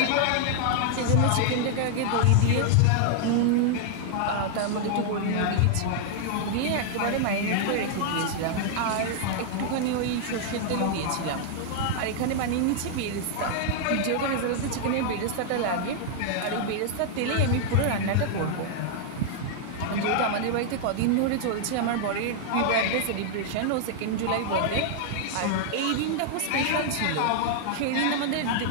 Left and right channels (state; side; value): different; both; correlation -0.01